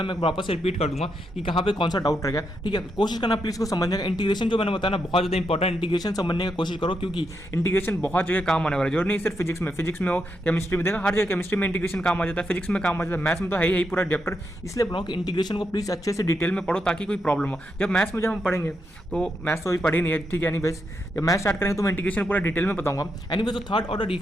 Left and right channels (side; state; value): both; normal; correlation 0.82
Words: मैं वापस से रिपीट कर दूंगा कि कहाँ पे कौन सा डाउट रह गया। ठीक है, कोशिश करना प्लीज को समझने का। इंटीग्रेशन जो मैंने बताया ना बहुत ज़्यादा इंपॉर्टेंट, इंटीग्रेशन समझने की कोशिश करो, क्योंकि इंटीग्रेशन बहुत जगह काम आने वाला है। जरूर नहीं सिर्फ फिजिक्स में हो, केमिस्ट्री में देखा, हर जगह केमिस्ट्री में इंटीग्रेशन काम आ जाता है, फिजिक्स में काम आ जाता है, मैथ्स में तो है ही पूरा चैप्टर। इसलिए बोला कि इंटीग्रेशन को प्लीज अच्छे से डिटेल में पढ़ो ताकि कोई प्रॉब्लम हो। जब मैथ्स में हम पढ़ेंगे तो मैथ्स तो अभी पढ़ी नहीं है, ठीक है, एनीवेज जब मैथ स्टार्ट करेंगे तो मैं इंटीग्रेशन पूरा डिटेल में बताऊंगा। एनीवेज तो थर्ड ऑर्डर